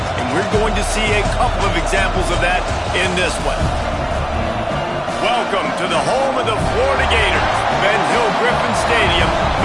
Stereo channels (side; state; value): both; identical; correlation 1.00